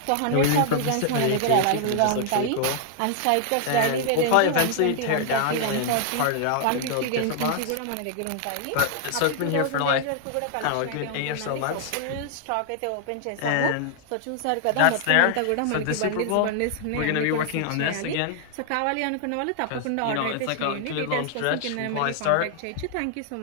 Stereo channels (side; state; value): both; different; correlation 0.00